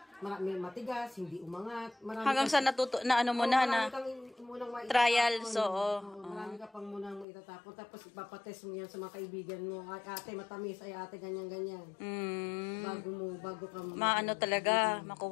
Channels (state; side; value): drops out; right; at 7.2 s